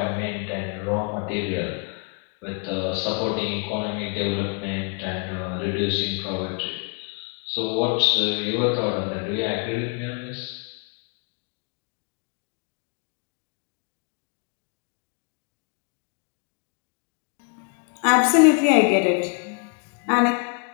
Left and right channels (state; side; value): quieter; right; 37.1 dB